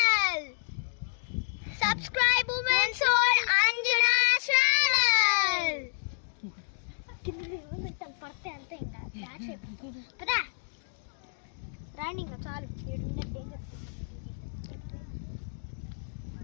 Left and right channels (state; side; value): silent; right; digital silence